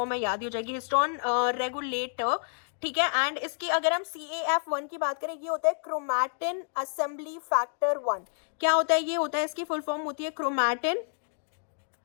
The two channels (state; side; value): silent; right; digital silence